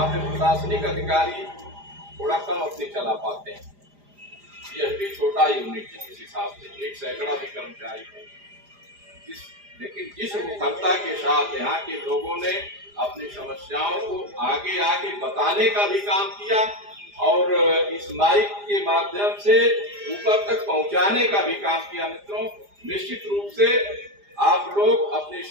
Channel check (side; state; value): left; late; 4.9 ms